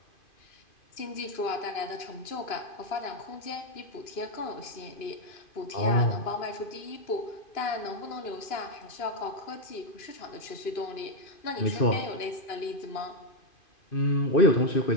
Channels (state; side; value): late; right; 2.5 ms